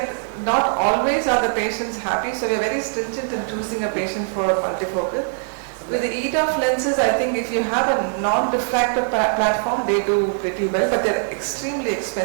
not always are the patients happy, so we are very stringent in choosing a patient for multifocal. With the EDOF lenses, I think if you have a non-refractive platform, they do pretty well, but they're extremely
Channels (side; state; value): left; silent; digital silence